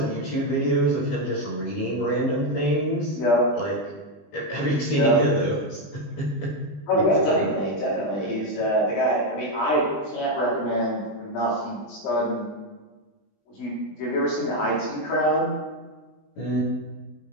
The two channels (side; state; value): right; late; 20 ms